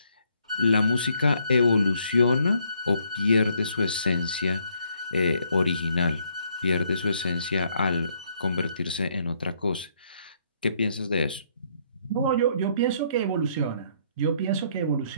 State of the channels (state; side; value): inverted; both; correlation -0.69